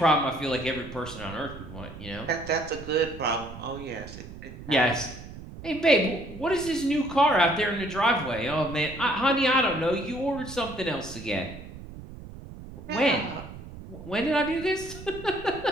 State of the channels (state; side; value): noise; right; rumble, 14 dB below the sound